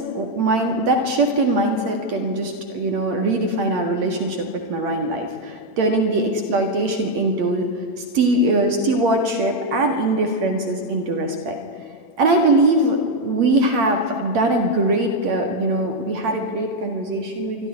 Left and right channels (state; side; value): late; left; 9.4 ms